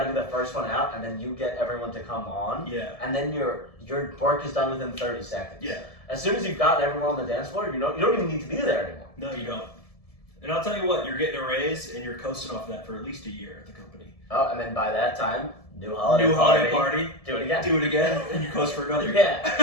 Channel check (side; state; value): right; late; 1.7 ms